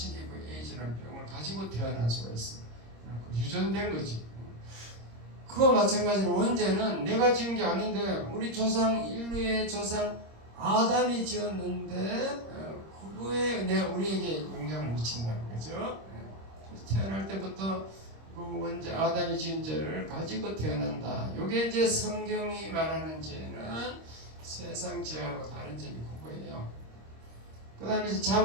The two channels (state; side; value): late; left; 26 ms